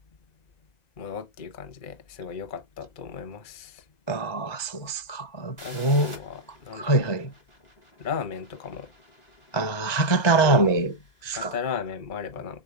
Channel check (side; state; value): right; late; 1.9 ms